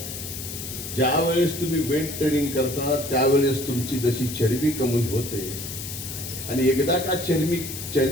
ज्या वेळेस तुम्ही वेट ट्रेनिंग करता त्यावेळेस तुमची जशी चरबी कमी होते आणि एकदा का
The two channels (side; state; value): left; noise; hiss, 8 dB below the sound